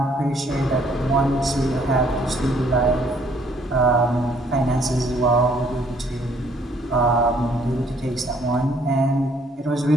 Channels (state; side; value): normal; both; correlation 0.64